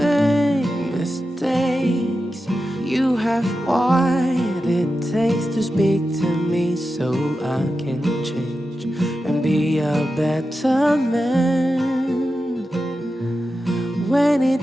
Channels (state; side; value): normal; both; correlation 0.91